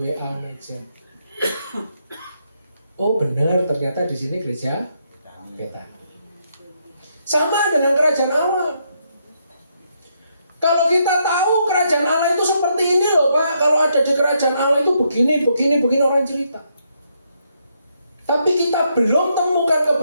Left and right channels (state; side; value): inverted; both; correlation -0.77